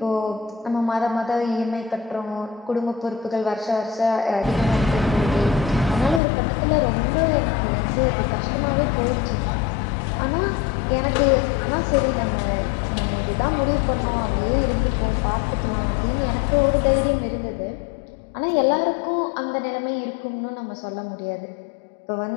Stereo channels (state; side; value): drops out; right; at 6.2 s